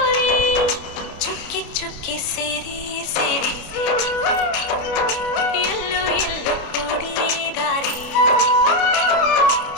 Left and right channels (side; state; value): right; late; 29 ms